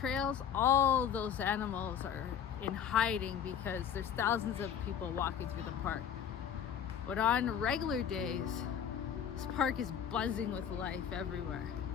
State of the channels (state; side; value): quieter; right; 8.5 dB